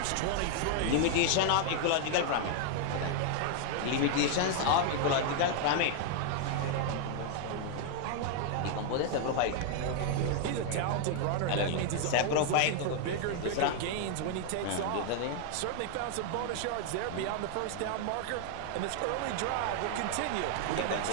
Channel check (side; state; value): both; different; correlation 0.00